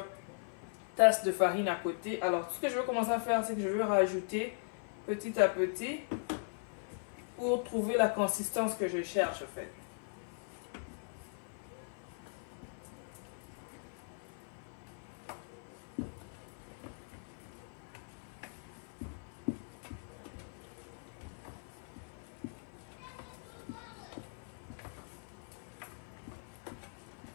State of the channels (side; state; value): right; silent; 52 dB below the other